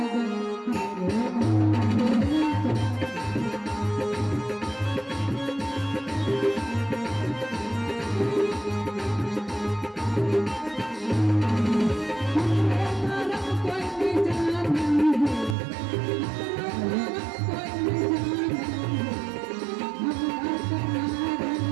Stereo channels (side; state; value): left; drops out; at 15.6 s